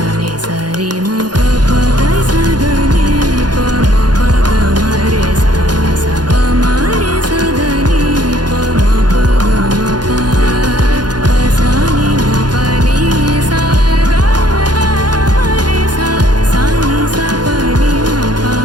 नि सा रे म प प ग स द नि प म प ग म रे सा सा प म रे सा द नि प म प ग म प प सा नि म प नि सा ग ग म रे सा सा नि सा प नि म प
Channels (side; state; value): left; late; 0.70 ms